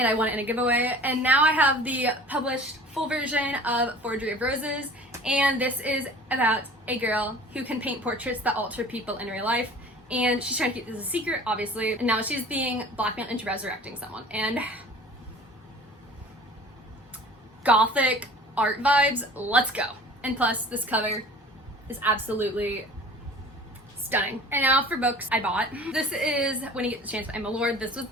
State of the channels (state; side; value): normal; both; correlation 0.45